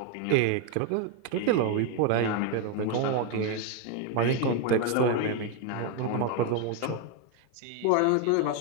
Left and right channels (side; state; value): both; different; correlation 0.01